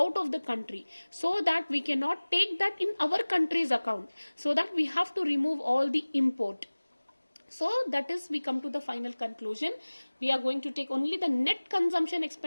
of the country, so that we cannot take that in our country's account. So that we have to remove all the import. So that is, we come to the final conclusion. We are going to take only the net consumption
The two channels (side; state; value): both; inverted; correlation -1.00